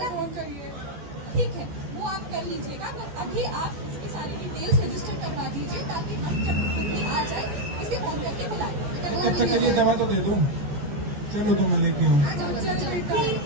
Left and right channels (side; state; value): left; late; 14 ms